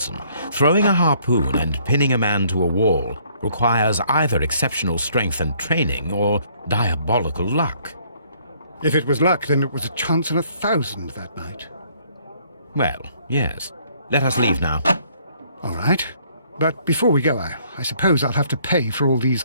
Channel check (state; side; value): inverted; both; correlation -0.63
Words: Throwing a harpoon and pinning a man to a wall requires either exceptional strength and training or diabolical luck. If it was luck, then it was a chance in 1,000 that night. Well, yes. Let us leave now. All right. But before we go, I suppose I'll have to pay for all these